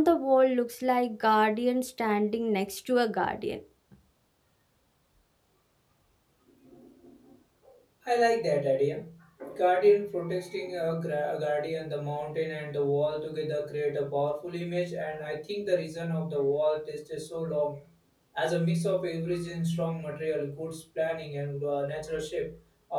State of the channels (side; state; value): both; identical; correlation 1.00